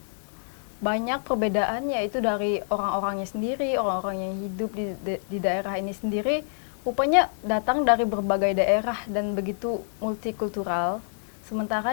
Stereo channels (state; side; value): silent; right; digital silence